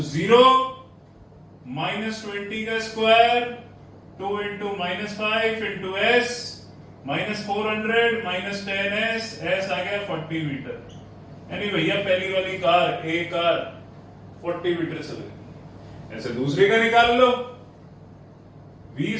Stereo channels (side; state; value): both; identical; correlation 1.00